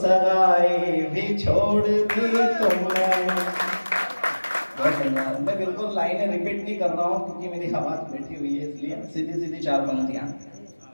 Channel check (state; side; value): inverted; both; correlation -1.00